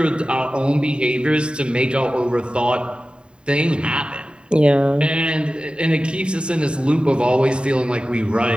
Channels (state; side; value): late; left; 0.051 ms